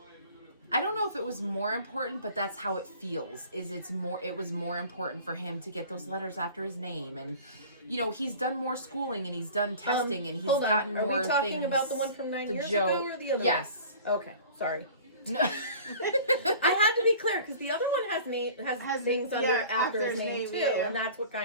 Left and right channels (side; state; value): both; inverted; correlation -0.44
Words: I don't know if it was more important, but that's how it feels. It was more important for him to get those letters after his name, and he's done more schooling and he's done testing and he's Hold on. gotten Are more we talking things. about the one from 9 the years Joe- ago or the other Yes. one? Okay, sorry. No. I had to be clear because the other one has things under after his name too, yeah. and that's what